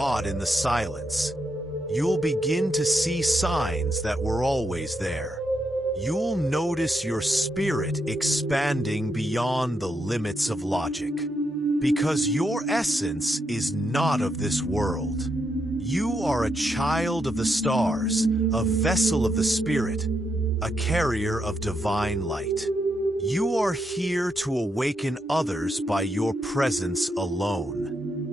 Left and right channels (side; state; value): both; normal; correlation 0.81